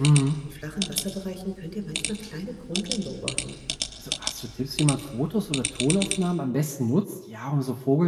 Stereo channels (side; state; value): both; identical; correlation 1.00